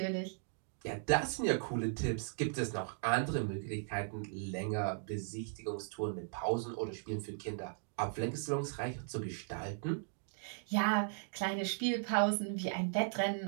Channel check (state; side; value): silent; left; digital silence